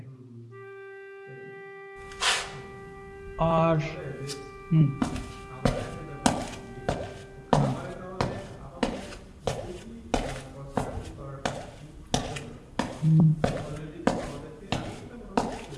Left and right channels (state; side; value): identical; both; correlation 1.00